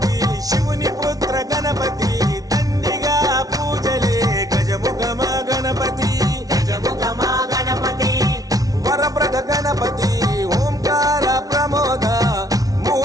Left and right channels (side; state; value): left; late; 0.18 ms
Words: శివుని పుత్ర గణపతి దండిగా పూజలే గజముఖమా గణపతి గజముఖమా గణపతి వరప్రద గణపతి ఓంకార ప్రమోద